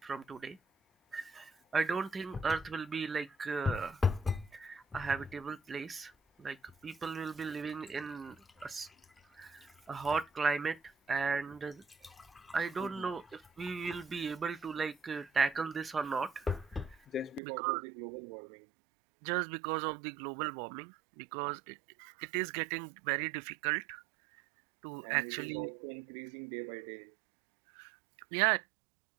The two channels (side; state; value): left; drops out; at 17.4 s